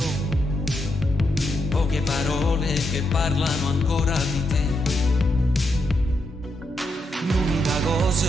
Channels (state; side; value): normal; both; correlation 0.81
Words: poche parole che parlano ancora di te. L'unica